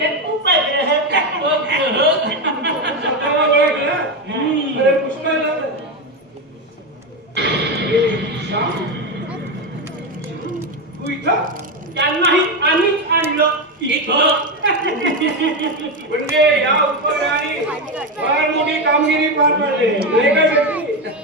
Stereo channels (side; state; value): both; normal; correlation 0.12